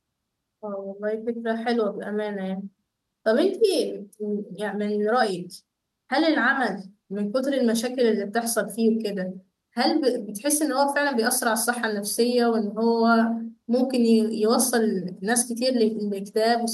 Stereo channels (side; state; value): both; identical; correlation 1.00